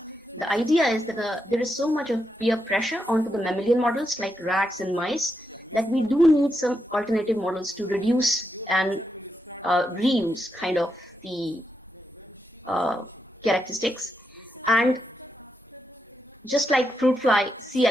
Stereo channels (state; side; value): normal; both; correlation 0.83